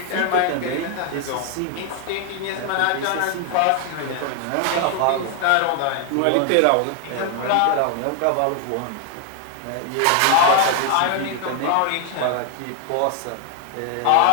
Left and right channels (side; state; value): both; different; correlation 0.00